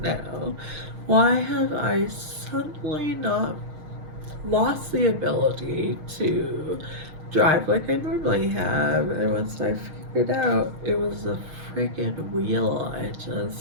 Why have I suddenly not lost the ability to drive like I normally have? And once I figured out it was the freaking wheel,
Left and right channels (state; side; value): late; left; 6.4 ms